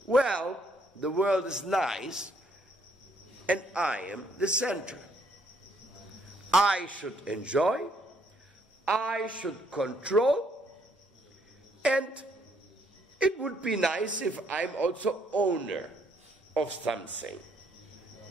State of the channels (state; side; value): normal; both; correlation 0.69